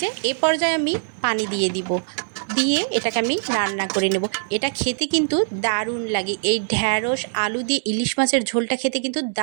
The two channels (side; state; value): left; silent; digital silence